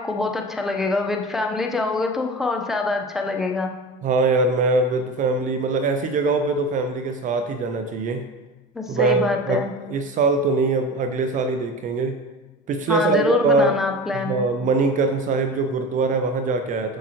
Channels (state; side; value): normal; both; correlation 0.32